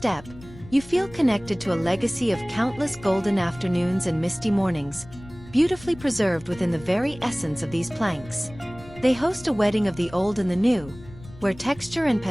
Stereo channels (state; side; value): noise; left; rumble, 19 dB below the sound